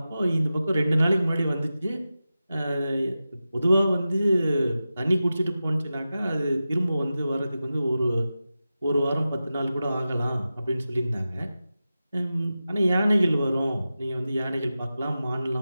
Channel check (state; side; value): inverted; both; correlation -0.93